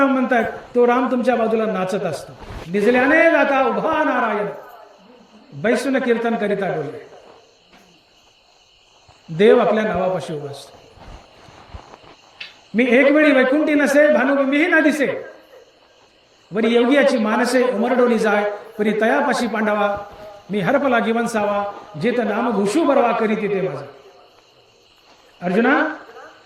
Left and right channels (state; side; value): identical; both; correlation 1.00